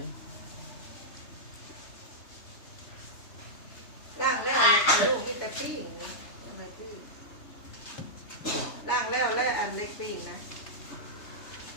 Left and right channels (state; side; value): late; right; 3.3 ms